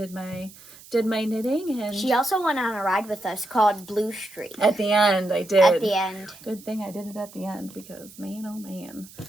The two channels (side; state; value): right; noise; hiss, 20 dB below the sound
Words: my knitting. And She also went on a ride with us called Blue Street. at the end, I did. At the end. Good thing I did it at the end because man, oh man.